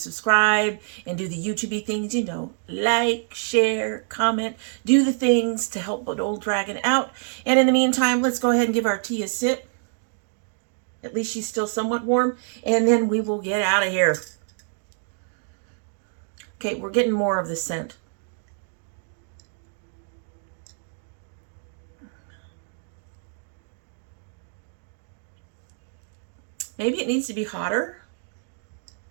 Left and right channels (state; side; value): silent; left; 61 dB below the other